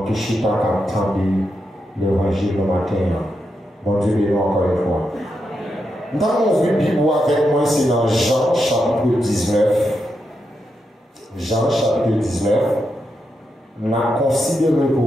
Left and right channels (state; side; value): normal; both; correlation 0.85